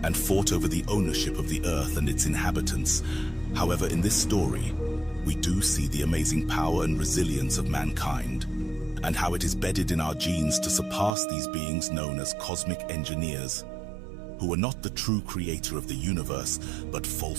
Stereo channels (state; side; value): drops out; left; at 11.1 s